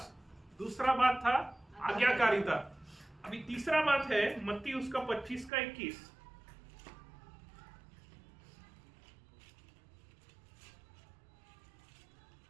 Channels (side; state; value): left; drops out; at 5.5 s